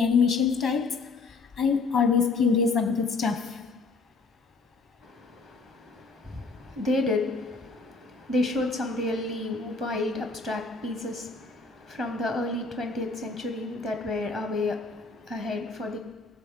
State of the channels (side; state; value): right; quieter; 4.0 dB